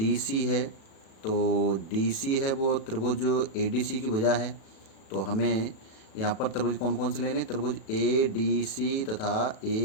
सी है। तो डी सी है वो त्रिभुज ए डी सी की भुजा है। तो हमें यहाँ पर त्रिभुज कौन कौन से लेने, त्रिभुज ए डी सी तथा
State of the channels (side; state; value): right; late; 37 ms